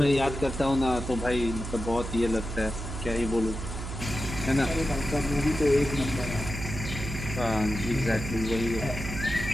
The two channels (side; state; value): right; noise; hum, 7 dB below the sound